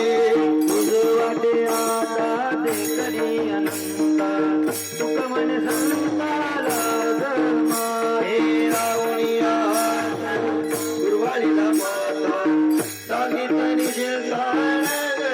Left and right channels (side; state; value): both; identical; correlation 1.00